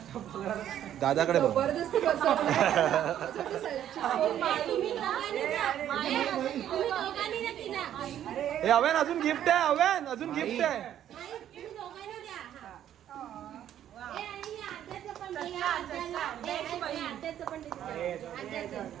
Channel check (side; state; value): left; quieter; 10.9 dB